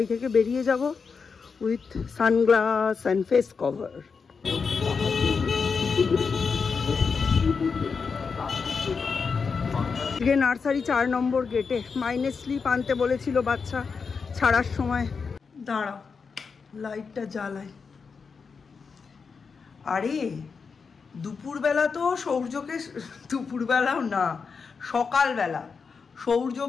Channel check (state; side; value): quieter; right; 5.3 dB